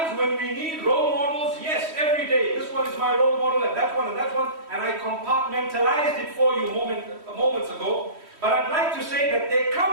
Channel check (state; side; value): late; left; 3.1 ms